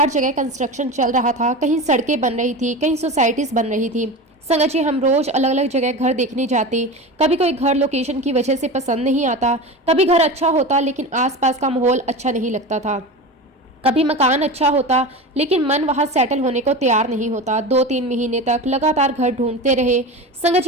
जगह कंस्ट्रक्शन चल रहा था, कहीं सड़कें बन रही थी, कहीं सोसाइटीज बन रही थी। संगत जी, हम रोज अलग अलग जगह घर देखने जाते। कभी कोई घर लोकेशन की वजह से पसंद नहीं आता, कभी घर अच्छा होता लेकिन आसपास का माहौल अच्छा नहीं लगता था। कभी मकान अच्छा होता लेकिन मन वहां सेटल होने को तैयार नहीं होता। 2-3 महीने तक लगातार घर ढूंढते रहे। संगत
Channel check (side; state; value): both; normal; correlation 0.27